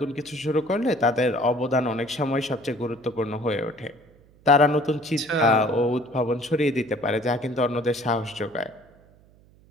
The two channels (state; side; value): noise; right; hum, 28 dB below the sound